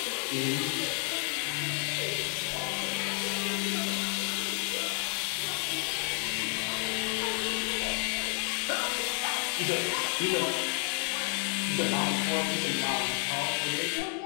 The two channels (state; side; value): quieter; right; 38.7 dB